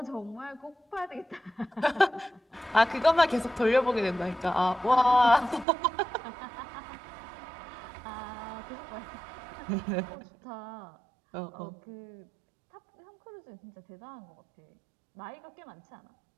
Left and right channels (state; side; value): drops out; left; at 5.7 s